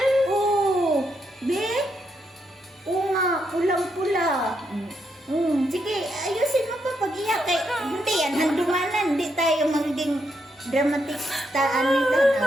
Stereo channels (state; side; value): normal; both; correlation 0.79